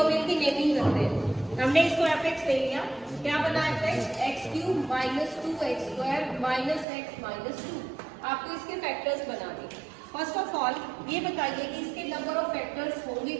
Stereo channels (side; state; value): left; drops out; at 6.9 s